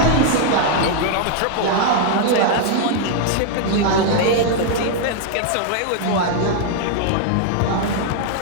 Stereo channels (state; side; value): different; both; correlation 0.00